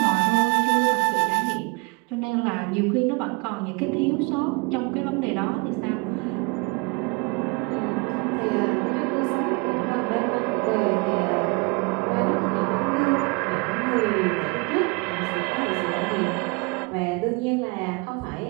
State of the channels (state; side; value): quieter; left; 29.4 dB